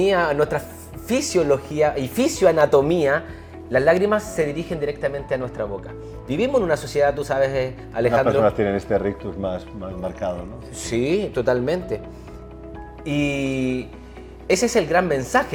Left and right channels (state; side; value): identical; both; correlation 1.00